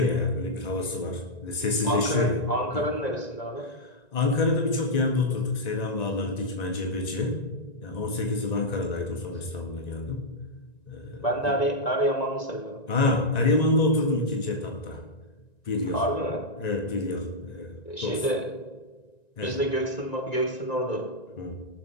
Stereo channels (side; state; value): right; late; 1.9 ms